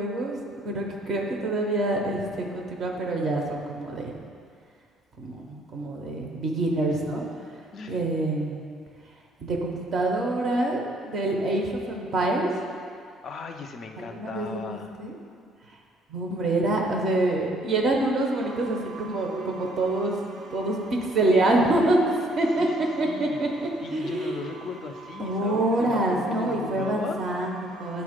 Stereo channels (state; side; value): normal; both; correlation 0.62